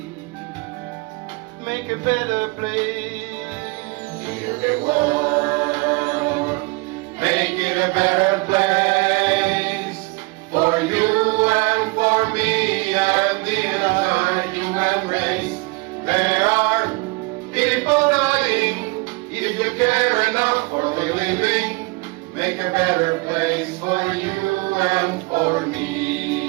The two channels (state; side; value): quieter; left; 27.6 dB